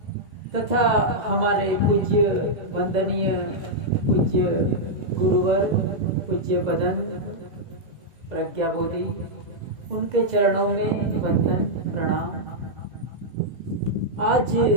तथा हमारे पूज्य वंदनीय पूज्य गुरुवर पूज्य बदन प्रज्ञा बोधि, उनके चरणों में वंदन प्रणाम। आज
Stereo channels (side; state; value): left; late; 2.0 ms